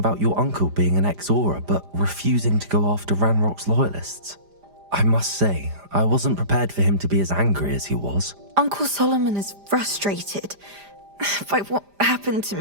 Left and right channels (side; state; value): left; late; 5.0 ms